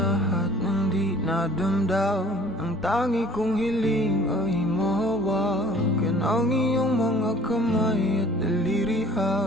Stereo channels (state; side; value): normal; both; correlation 0.50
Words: ng di nadamdam. Ang tangi kong hiling ay mahawakan ang iyong mga kamay at daliri,